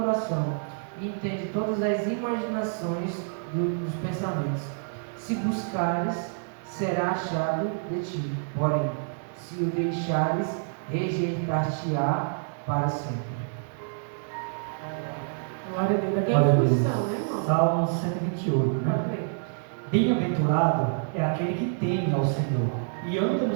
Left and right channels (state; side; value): silent; left; digital silence